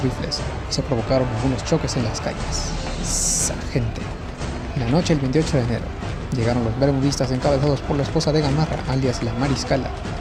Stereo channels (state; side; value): identical; both; correlation 1.00